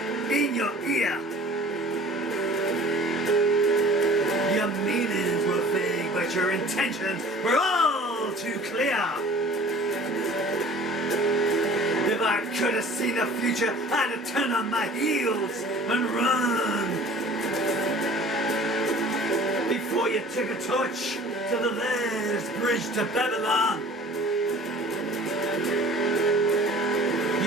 in your ear. Your meanings were vague, but your intentions were all too clear. If I could have seen the future, I'd have turned on my heels and run. Before you took a torch to the last bridge to Babylon.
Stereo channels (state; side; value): normal; both; correlation 0.47